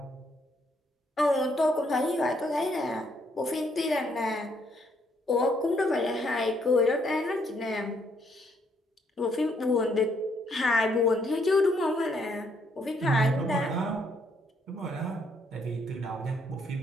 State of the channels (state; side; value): normal; both; correlation 0.71